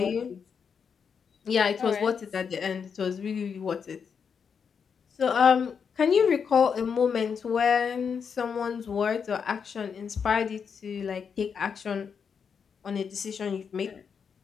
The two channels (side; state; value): right; quieter; 6.5 dB